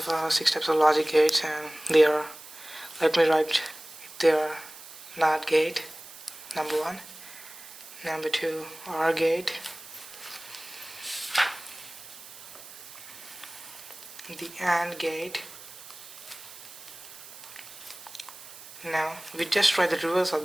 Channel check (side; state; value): right; noise; hiss, 16 dB below the sound